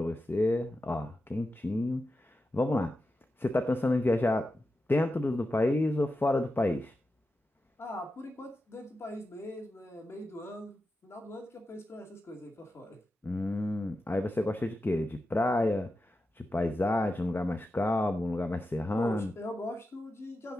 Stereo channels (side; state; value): both; normal; correlation 0.91